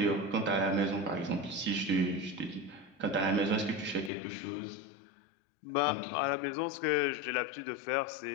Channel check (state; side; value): drops out; right; at 4.1 s